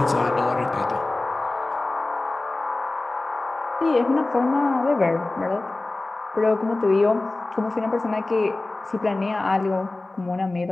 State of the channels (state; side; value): quieter; right; 3.0 dB